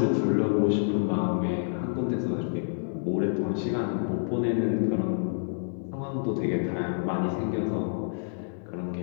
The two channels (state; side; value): silent; right; digital silence